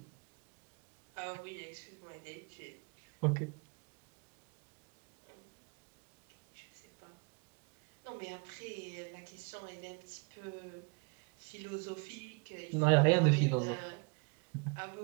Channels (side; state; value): left; quieter; 33.4 dB